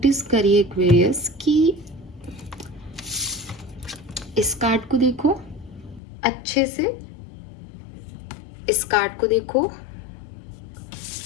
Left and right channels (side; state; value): right; drops out; at 6.0 s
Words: करिए एक्वेरियस कि इस कार्ड को देखो अच्छे से, इस कार्ड को देखो